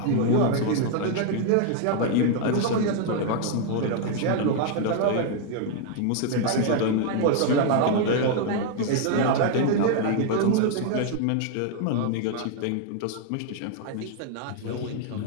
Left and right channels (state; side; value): different; both; correlation 0.00